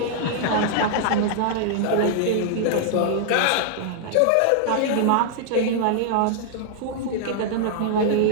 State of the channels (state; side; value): different; both; correlation -0.01